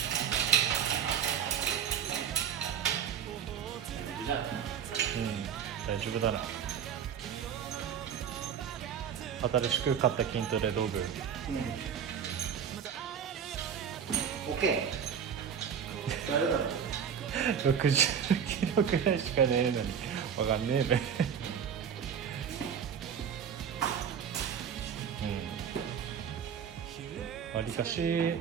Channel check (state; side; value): quieter; left; 7.9 dB